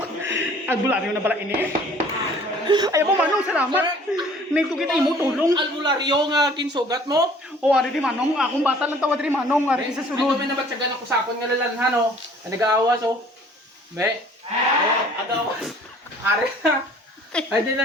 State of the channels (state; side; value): normal; both; correlation 0.53